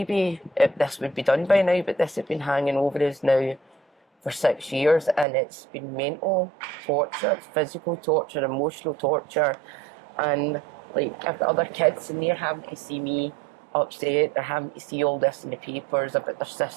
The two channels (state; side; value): drops out; left; at 5.2 s